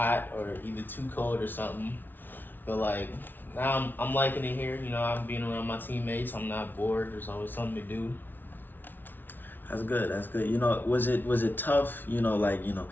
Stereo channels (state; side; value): late; right; 0.091 ms